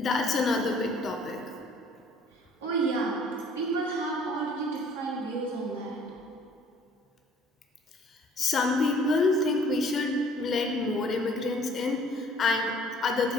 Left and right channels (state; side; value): normal; both; correlation 0.56